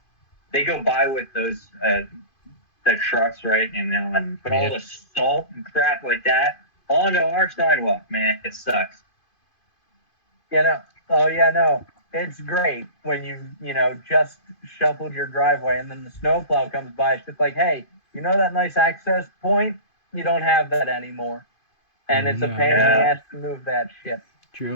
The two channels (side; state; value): right; late; 2.5 ms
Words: go by with those the trucks, right? And put all the salt and crap like that onto our sidewalk. Man, it sucks. It's great when you just shoveled your driveway and then the snowplow comes by. It's just like, hey, you know that nice access point? You don't have that anymore. And it's a pain in the ass to move that shit.